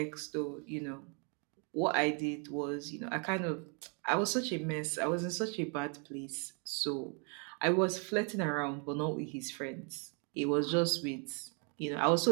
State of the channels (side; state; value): left; quieter; 37.3 dB